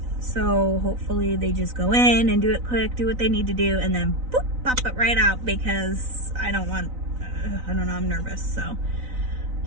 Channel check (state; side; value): late; left; 3.9 ms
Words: so hopefully they just go in and do it quick, do what they need to do, and then boop, pop it right out, because I don't know, I'm nervous, so.